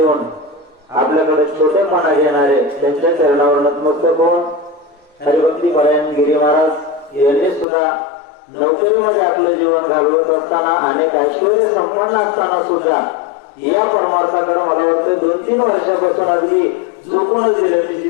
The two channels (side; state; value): right; drops out; at 7.7 s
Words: आपल्याकडे छोटेपणा घेणारे त्यांच्या चरणावर नतमस्तक होऊन हरिभक्ती परायण गिरी महाराज यांनी सुद्धा नोकरीमध्ये आपलं जीवन घालवत असताना अनेक ऐश्वर्य संपन्न असताना सुद्धा या परमार्थाकडे मला वाटतं 2-3 वर्षापासून अगदी झोपूनच गेले. मी